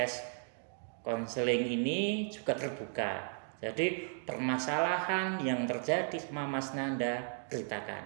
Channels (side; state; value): left; silent; 54 dB below the other